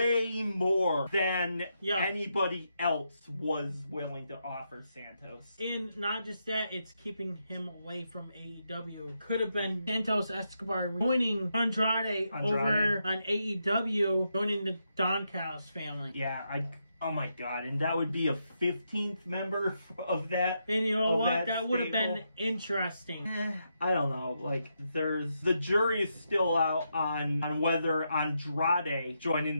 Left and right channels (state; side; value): inverted; both; correlation -0.82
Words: more than anybody else was willing to offer Santos. And not just that, it's keeping him away from AEW. Could have been Santos Escobar joining Andrade over on AEW, joining the Don Callis family. Yeah, oh my god, and that would be a 15th member of that. And you know what? That would have been interesting. I don't know. Like, the jury is still out on whether Andrade